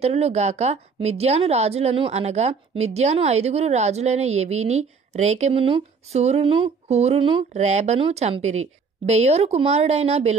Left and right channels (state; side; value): quieter; left; 5.2 dB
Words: గాక మిద్యాను రాజులను అనగా మిద్యాను 5 రాజులైన ఎవీని, రేకెమును, సూరును, హూరును, రేబను చంపిరి. బెయోరు కుమారుడైన